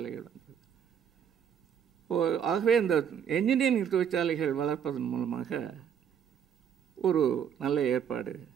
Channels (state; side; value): quieter; left; 8.2 dB